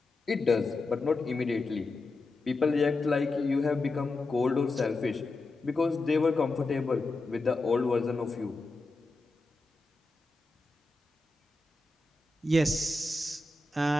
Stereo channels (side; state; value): right; quieter; 3.2 dB